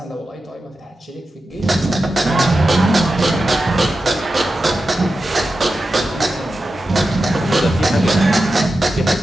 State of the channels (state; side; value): normal; both; correlation 0.91